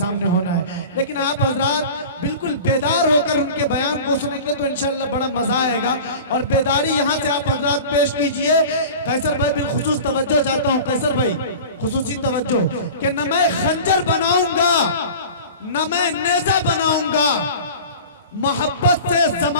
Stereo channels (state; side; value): inverted; both; correlation -0.37